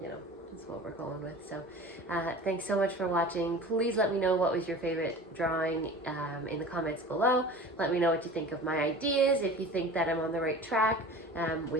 you know, that's what we're going with. So thanks so much for watching. Please let me know what was your favorite drawing in the comments below. Let me know what you think of my ideas, if you think that I'm on the right track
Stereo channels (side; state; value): both; normal; correlation 0.38